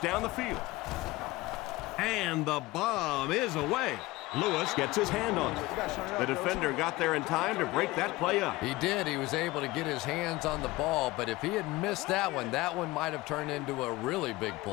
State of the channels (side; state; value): right; quieter; 19.8 dB